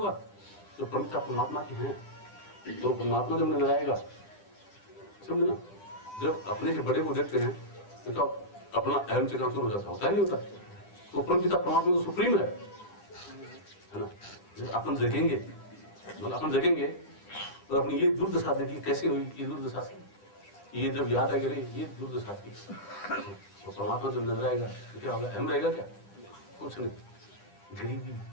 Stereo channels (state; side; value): late; right; 10 ms